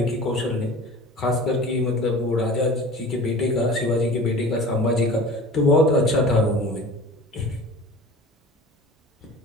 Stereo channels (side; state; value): both; normal; correlation 0.39